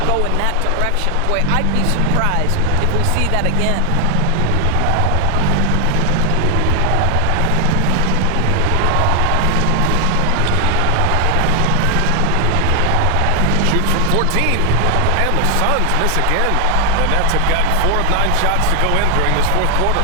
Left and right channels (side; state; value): both; different; correlation 0.00